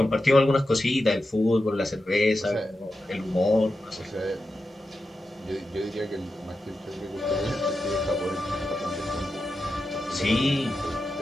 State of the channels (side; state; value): both; normal; correlation 0.90